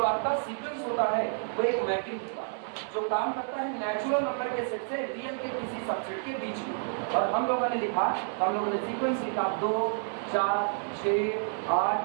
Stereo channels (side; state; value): left; silent; digital silence